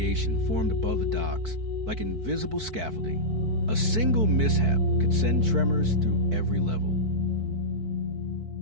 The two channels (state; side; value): late; left; 4.6 ms